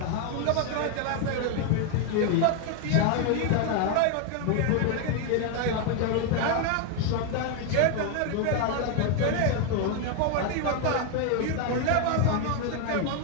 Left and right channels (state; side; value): different; both; correlation 0.01